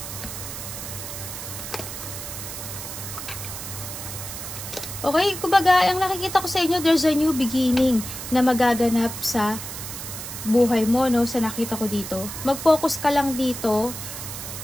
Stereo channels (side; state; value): right; noise; hiss, 8 dB below the sound